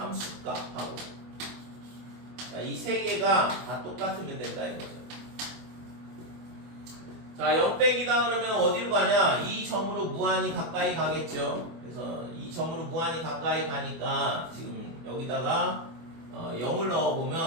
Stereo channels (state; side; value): late; left; 24 ms